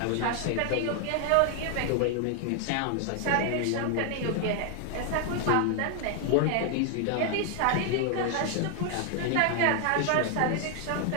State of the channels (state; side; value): different; both; correlation 0.00